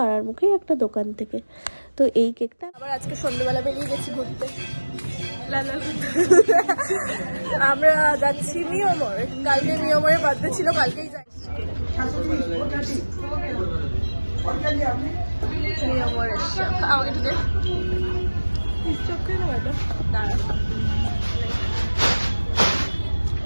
মুখেই একটা দোকান থেকে। তো এই কেকটা আবার আজকে সন্ধ্যেবেলা বেরিয়ে গেছি ঘুরতে। আমরা যাচ্ছি নিয়মরে, কালকে নিয়মরে বার্থডে ছিল, কালকেই যাচ্ছি নিয়মরে। আমাকে একটু দে,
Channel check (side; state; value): both; inverted; correlation -1.00